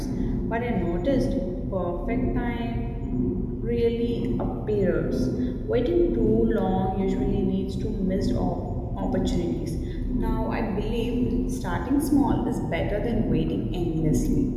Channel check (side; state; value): both; identical; correlation 1.00